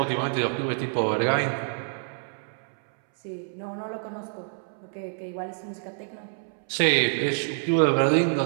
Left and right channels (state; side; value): silent; left; 60 dB below the other